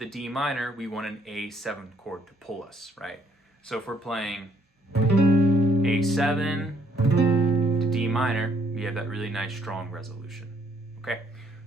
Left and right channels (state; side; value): normal; both; correlation 0.68